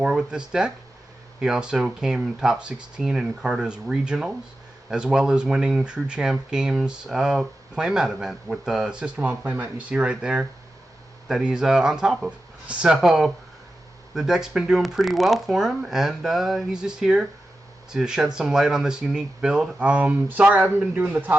with this deck. He also came top 16 in Carta's regionals, as well as winning True Champ Games playmat event with the System on playmat you see right there that he's on top of. So the deck's been doing pretty well for him, and he's just here to shed some light on this unique build. Sorry I haven't been doing the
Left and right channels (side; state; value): both; normal; correlation 0.92